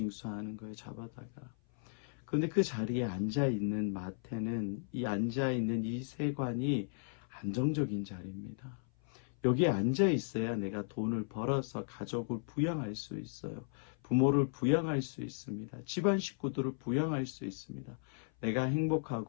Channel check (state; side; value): silent; right; 54 dB below the other